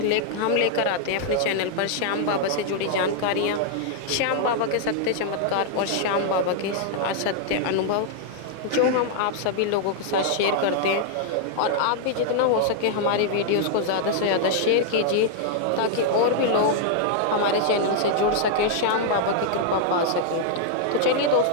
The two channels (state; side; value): different; both; correlation -0.01